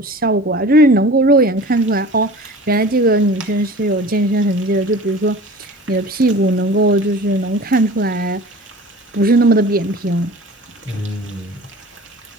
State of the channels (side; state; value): both; normal; correlation 0.40